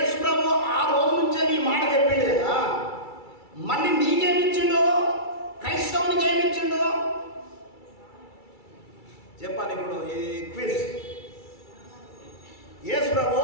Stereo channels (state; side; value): late; right; 2.3 ms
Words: ప్రభు ఆ రోజు నుంచే నీ మాట చెప్పిండు కదా, మళ్ళీ నీకేమిచ్చిండు? క్రైస్తవునికి ఏమిచ్చిండు చెప్పాలి. ఇప్పుడు ఈ క్విజ్. యేసు ప్రభు